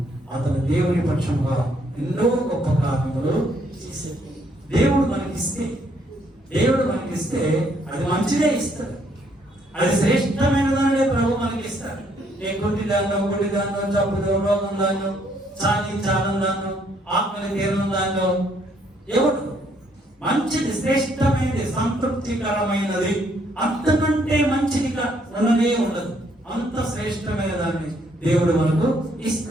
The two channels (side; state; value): both; normal; correlation 0.69